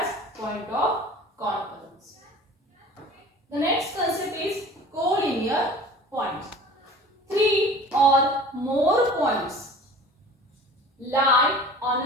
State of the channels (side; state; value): both; normal; correlation 0.43